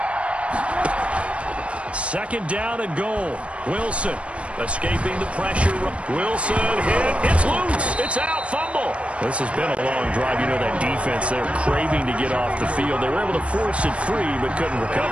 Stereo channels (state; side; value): late; left; 0.061 ms